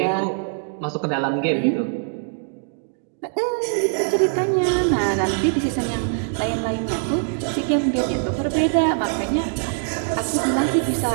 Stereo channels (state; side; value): silent; left; digital silence